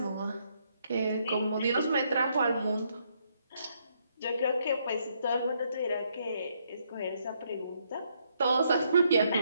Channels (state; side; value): inverted; both; correlation -0.74